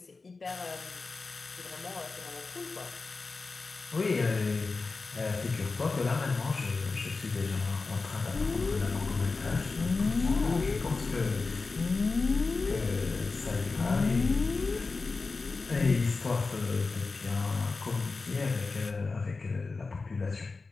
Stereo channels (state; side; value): quieter; right; 4.0 dB